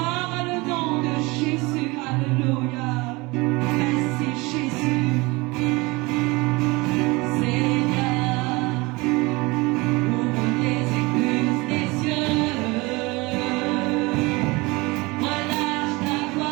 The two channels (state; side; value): quieter; left; 24.0 dB